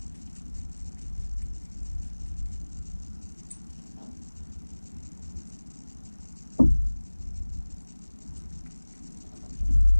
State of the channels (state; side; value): inverted; both; correlation -1.00